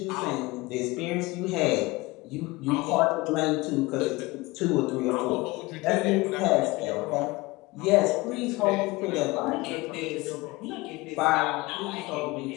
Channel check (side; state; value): right; quieter; 22.2 dB